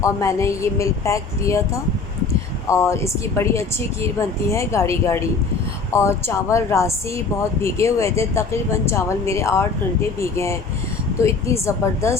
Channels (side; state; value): right; quieter; 4.5 dB